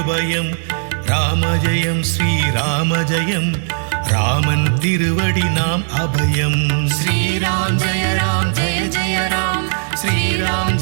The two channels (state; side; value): silent; left; digital silence